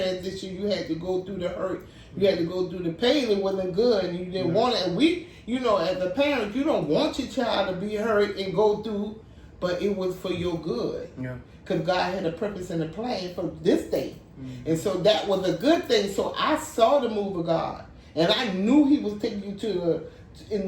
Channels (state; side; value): identical; both; correlation 1.00